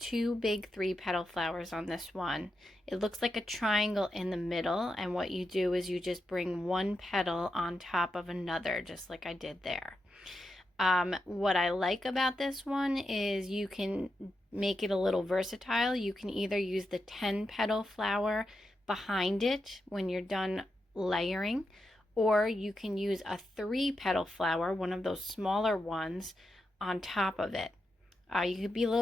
big 3 petal flowers on this one. It looks like a triangle in the middle, and what you do is you just bring one petal on top of another, just like I did there. What I like about this one is you can make it a little versatile. You can either use the 10 petal flower behind it when you're done layering, or you can use a 3 petal flower, one of those smaller ones, on top of it. You could be a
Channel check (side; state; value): both; normal; correlation 0.87